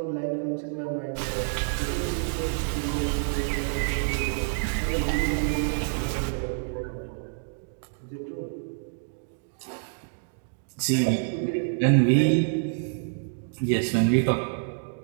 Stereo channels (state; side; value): silent; left; digital silence